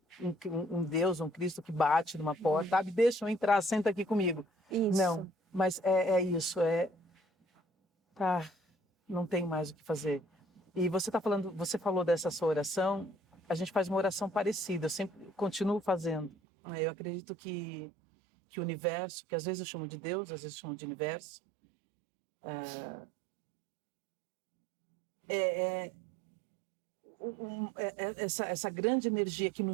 um Deus, um Cristo que bate numa porta, sabe? Deixa eu entrar, senta aqui comigo. Isso. Não, mas é isso, tá, não tem mais o que fazer. E você falou dessa sua oração, a gente faz uma oração parecida, eu sempre continuo fazendo. Eu acredito que o universo, que às vezes eu chamo de Deus, às vezes eu chamo de universo, essa grande energia que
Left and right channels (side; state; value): left; drops out; at 16.4 s